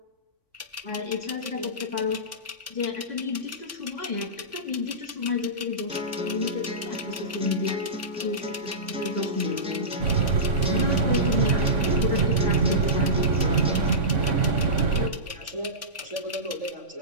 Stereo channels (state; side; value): late; left; 3.5 ms